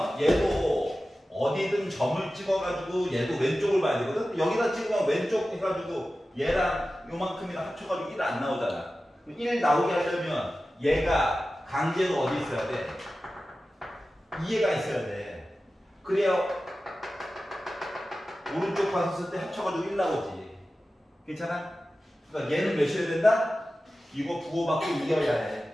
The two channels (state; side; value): normal; both; correlation 0.95